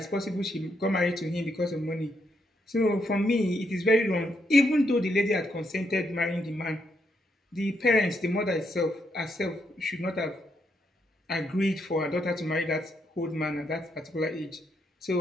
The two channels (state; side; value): normal; both; correlation 0.77